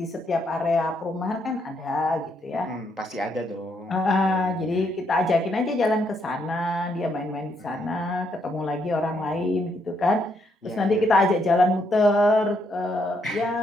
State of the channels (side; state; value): both; normal; correlation 0.75